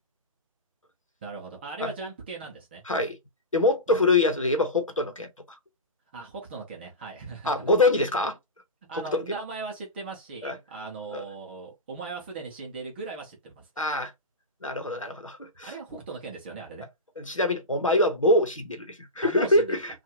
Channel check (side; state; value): both; normal; correlation -0.17